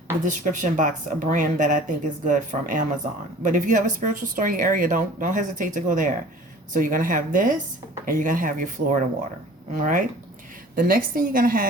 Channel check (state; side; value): normal; both; correlation 0.47